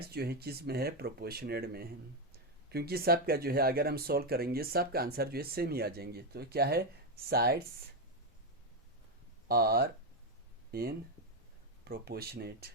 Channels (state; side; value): normal; both; correlation 0.06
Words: जो है किस में है, प्रोपोर्शनेट में है। क्योंकि सब का जो है अगर हम सॉल्व करेंगे सब का आंसर जो है सेम ही आ जाएंगे। तो क्या है, साइड्स आर इन प्रोपोर्शनेट।